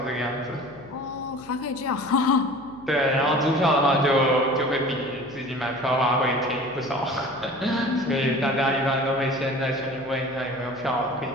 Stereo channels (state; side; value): noise; left; hum, 23 dB below the sound